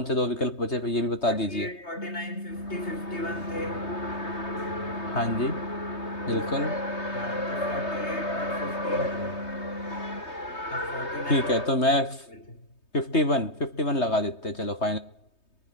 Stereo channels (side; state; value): right; late; 3.2 ms